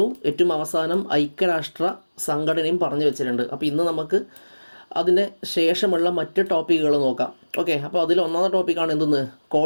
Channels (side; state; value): both; inverted; correlation -1.00